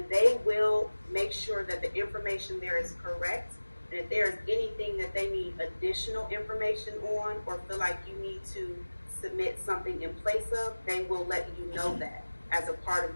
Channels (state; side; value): inverted; both; correlation -1.00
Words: they will make sure that the information there is correct. And if there's anything that they need additional information on or feel like you need to submit something in place of, they will let you know that as a part of